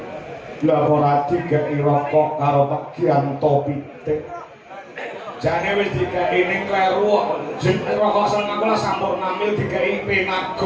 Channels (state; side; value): identical; both; correlation 1.00